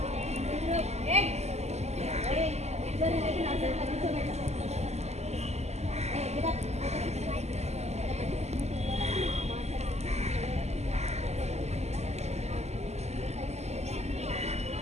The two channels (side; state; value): left; late; 0.32 ms